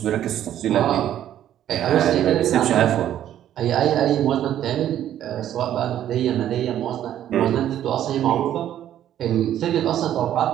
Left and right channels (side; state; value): left; quieter; 11.3 dB